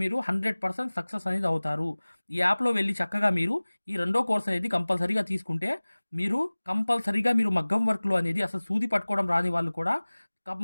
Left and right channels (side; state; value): both; inverted; correlation -1.00